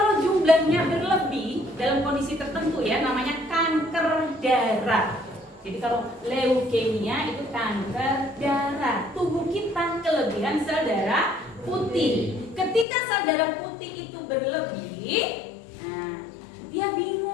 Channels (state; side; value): drops out; right; at 12.9 s